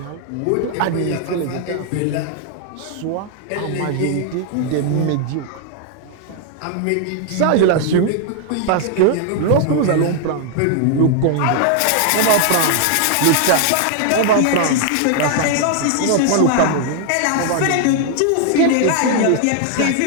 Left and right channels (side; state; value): both; different; correlation 0.00